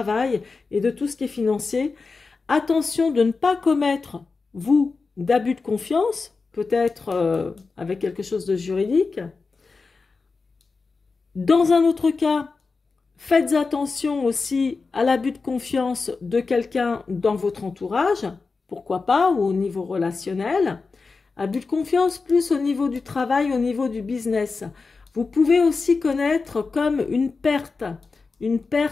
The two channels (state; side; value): quieter; right; 4.3 dB